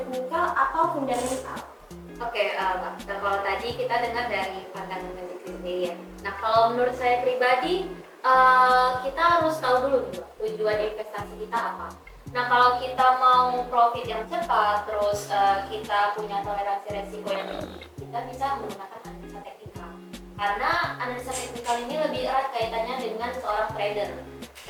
atau fundamental? Oke, Mbak. Nah, kalau tadi kita dengar dari pandangan Mbak Zikri sendiri ya. Nah, kalau menurut saya pribadi, kita harus tahu dulu nih, Mbak, tujuan investasi kita apa. Nah, kalau kita mau profit yang cepat, terus kita punya toleransi resiko yang tinggi, kita bisa menggunakan analisa teknikal. Karena analisa teknikal ini lebih erat kaitannya dengan seorang trader.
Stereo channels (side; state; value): both; identical; correlation 1.00